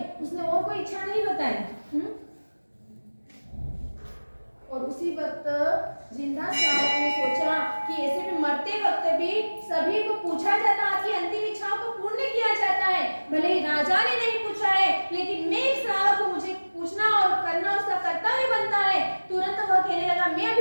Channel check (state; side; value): inverted; both; correlation -1.00